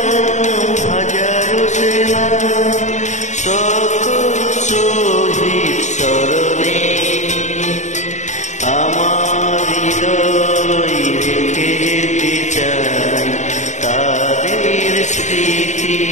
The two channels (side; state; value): right; late; 0.34 ms